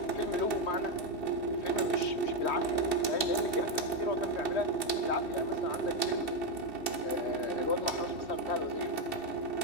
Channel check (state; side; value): late; right; 2.7 ms